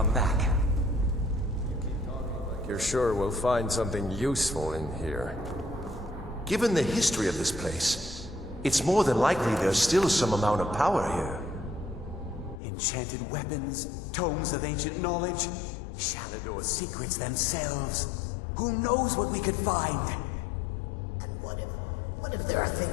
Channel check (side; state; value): right; drops out; at 12.6 s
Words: back? You're sure we'll find something useful in here? Given the history of this place, it's more than likely there's still some amount of power here. Enchanted weapons, tomes of ancient knowledge, Shalador's secrets themselves. Who knows what we could find? And what if there are